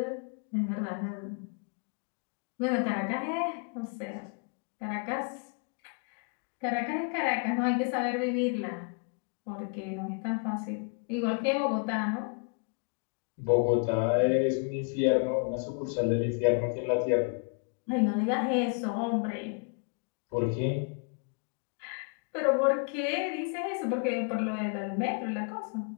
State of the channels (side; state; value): right; quieter; 38.1 dB